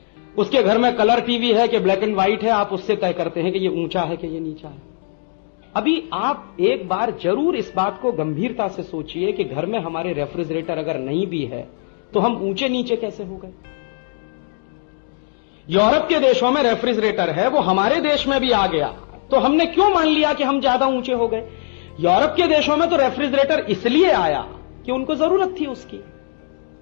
उसके घर में कलर टीवी है कि ब्लैक एंड व्हाइट है, आप उससे तय करते हैं कि ये ऊंचा है कि ये नीचा है। अभी आप एक बार जरूर इस बात को गंभीरता से सोचिए कि घर में हमारे रेफ्रिजरेटर अगर नहीं भी है तो हम ऊंचे नीचे कैसे हो गए। यूरोप के देशों में रेफ्रिजरेटर है, वो हमारे देश में भी आ गया, तो हमने क्यों मान लिया कि हम ज्यादा ऊंचे हो गए। यूरोप के देशों में तो रेफ्रिजरेटर इसलिए आया कि उनको जरूरत थी उसकी,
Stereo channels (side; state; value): right; silent; digital silence